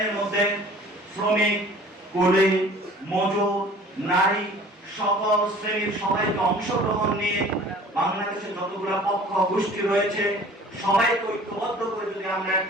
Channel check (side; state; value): both; normal; correlation 0.48